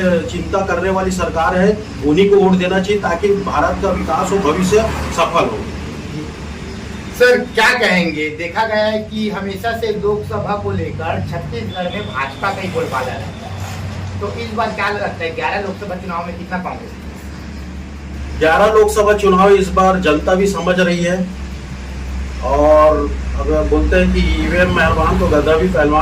चिंता करने वाली सरकार है। उन्हीं को वोट देना चाहिए, ताकि भारत का विकास हो, भविष्य सफल हो। सर, क्या कहेंगे, देखा गया है कि हमेशा से लोकसभा को लेकर छत्तीसगढ़ में भाजपा का ही बोलबाला रहता है, तो इस बार क्या लगता है 11 लोकसभा चुनाव में कितना कांग्रेस? 11 लोकसभा चुनाव इस बार जनता भी समझ रही है। और अगर बोलते हैं कि ईवीएम मेहरबान तो गधा भी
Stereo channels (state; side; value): identical; both; correlation 1.00